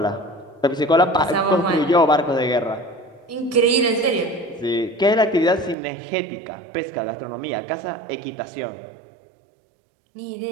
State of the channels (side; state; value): left; drops out; at 5.8 s